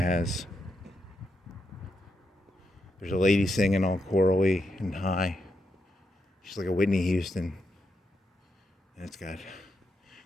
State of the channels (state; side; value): normal; both; correlation 0.83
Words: there's a lady singing all chorally and high. She's like a Whitney Houston. And then